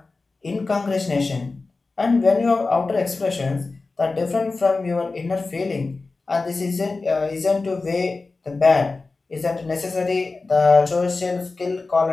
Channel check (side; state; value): right; quieter; 3.7 dB